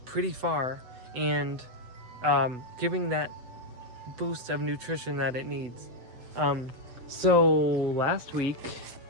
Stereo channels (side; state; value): left; late; 8.0 ms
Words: pretty far, and giving that boost of nutrition that it needs. So last week,